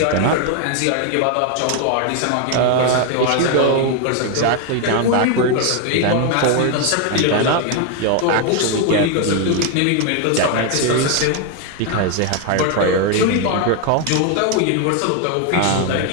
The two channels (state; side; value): different; both; correlation 0.01